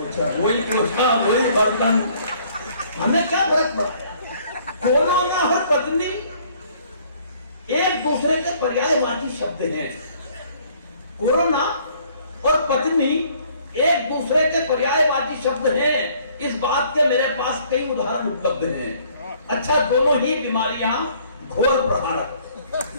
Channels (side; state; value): both; inverted; correlation -0.60